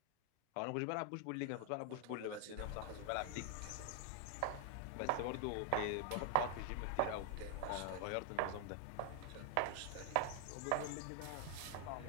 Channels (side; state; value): both; different; correlation 0.00